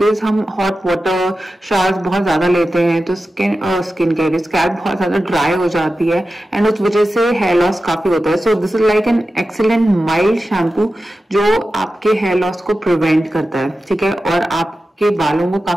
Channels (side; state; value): both; normal; correlation 0.93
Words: हम हॉट वाटर शावर्स बहुत ज्यादा लेते हैं, तो स्किन केयर स्कैल्प बहुत ज्यादा ड्राई हो जाती है एंड उस वजह से हेयर लॉस काफी होता है। सो this is like an excellent mild shampoo जो आपके हेयर लॉस को प्रिवेंट करता है, ठीक है, और आपके बालों को